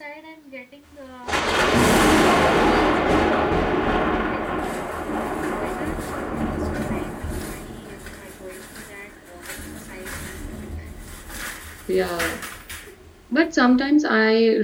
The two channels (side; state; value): both; identical; correlation 1.00